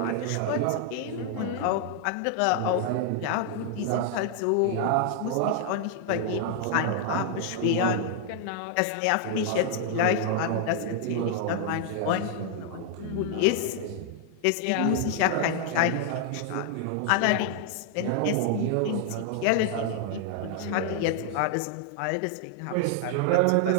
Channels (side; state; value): both; different; correlation 0.00